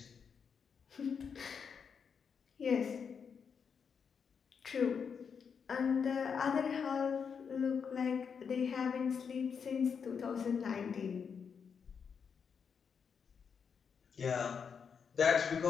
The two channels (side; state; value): right; quieter; 6.5 dB